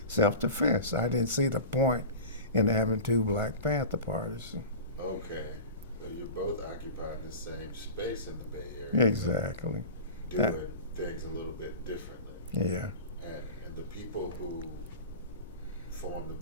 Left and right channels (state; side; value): inverted; both; correlation -0.33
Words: self-defense. I didn't see the point in having two Black Panther parties. Okay. So you're both occupying the same space in the Bay Area. Exactly. Doing things a little bit differently. Yeah. And the people who formed